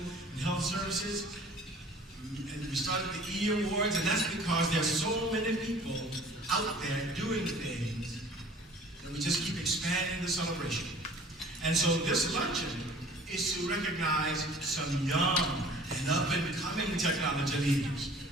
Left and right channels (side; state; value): both; normal; correlation 0.49